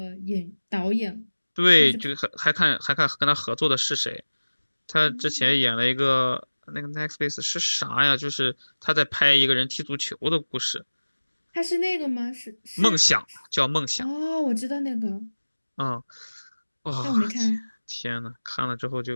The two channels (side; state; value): both; inverted; correlation -1.00